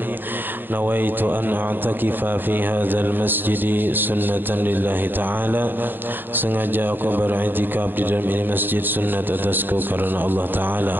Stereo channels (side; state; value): left; late; 0.094 ms